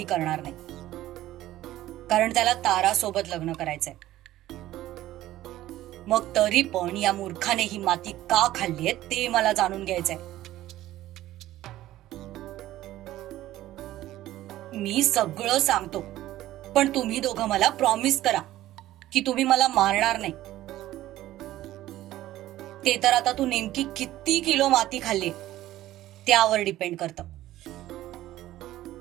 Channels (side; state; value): left; quieter; 14.8 dB